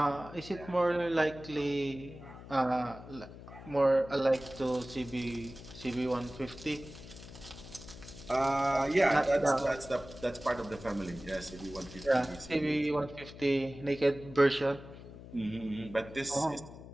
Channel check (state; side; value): noise; left; hum, 15 dB below the sound